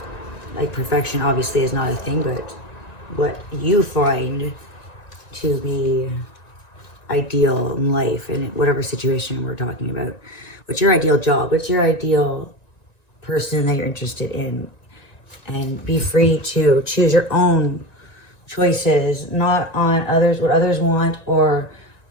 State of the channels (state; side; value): late; right; 1.9 ms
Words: Like, perfection obviously is not a thing, but what you find to be ideal in life, in whatever situation we're talking about. What's your ideal job? What's your ideal person that you're interested in? And be free to choose your own choices, not on others, what others want, or